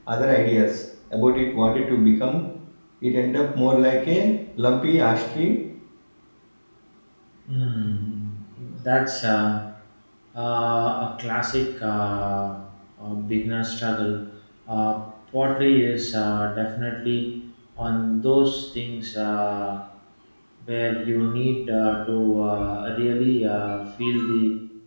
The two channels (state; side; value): inverted; both; correlation -1.00